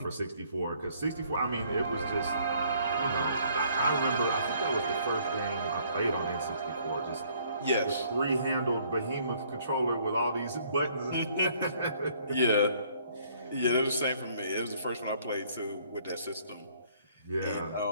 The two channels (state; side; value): inverted; both; correlation -0.62